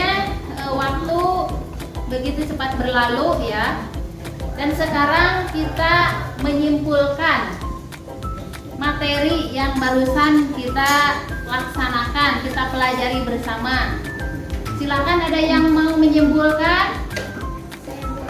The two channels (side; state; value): both; identical; correlation 1.00